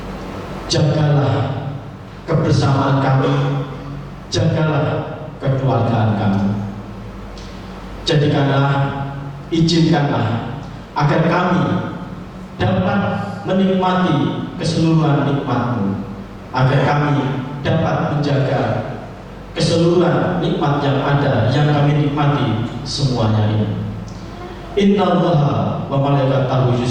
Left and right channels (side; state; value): both; identical; correlation 1.00